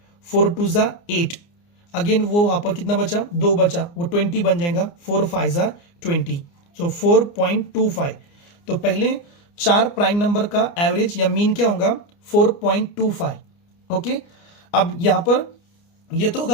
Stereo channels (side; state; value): right; late; 29 ms